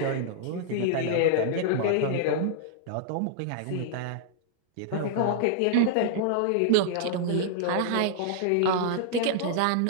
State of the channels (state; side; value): different; both; correlation -0.01